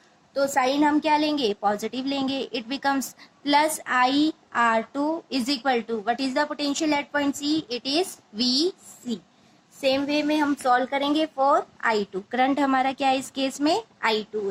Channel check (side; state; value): both; identical; correlation 1.00